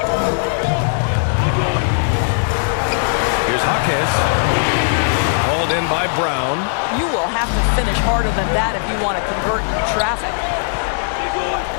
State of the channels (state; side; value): silent; right; 67 dB below the other